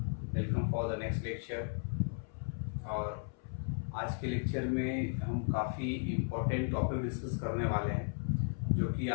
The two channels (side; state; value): right; silent; 54 dB below the other